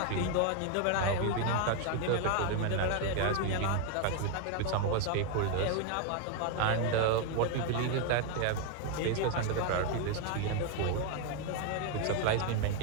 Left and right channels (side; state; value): both; different; correlation 0.01